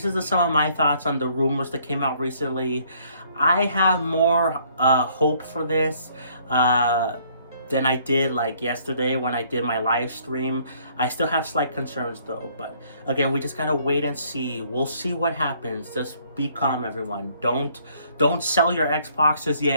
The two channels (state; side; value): inverted; both; correlation -0.63